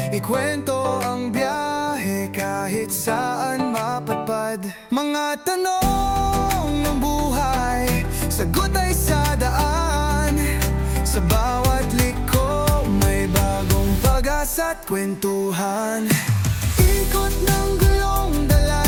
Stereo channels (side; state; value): both; identical; correlation 1.00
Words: Ikwento ang biyahe kahit saan mapadpad. Mga tanong ng buhay, sagot ay sa daan. Sa bawat liko may bagong pag-asa't kwentuhan. Ikot ng gulong,